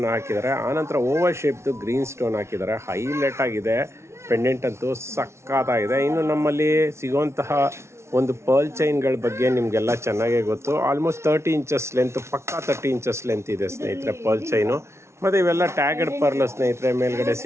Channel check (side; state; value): left; late; 0.13 ms